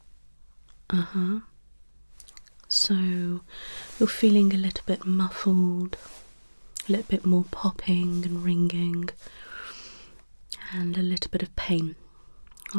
So you're feeling a little bit muffled, a little bit more popping and ringing, and a little bit of pain.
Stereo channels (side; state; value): both; inverted; correlation -1.00